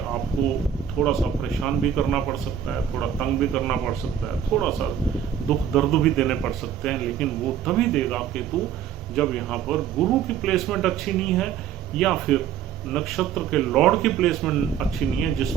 थोड़ा सा परेशान भी करना पड़ सकता है, थोड़ा तंग भी करना पड़ सकता है, थोड़ा सा दुख दर्द भी देने पड़ सकते हैं, लेकिन वो तभी देगा केतु जब यहाँ पर गुरु की प्लेसमेंट अच्छी नहीं है या फिर नक्षत्र के लॉर्ड की प्लेसमेंट अच्छी नहीं है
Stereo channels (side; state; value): left; quieter; 9.2 dB